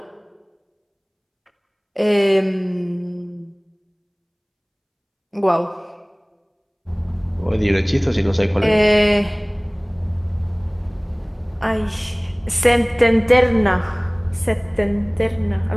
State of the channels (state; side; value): identical; both; correlation 1.00